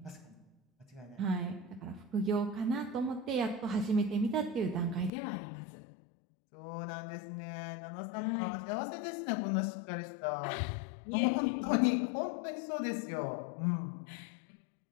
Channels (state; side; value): drops out; right; at 5.1 s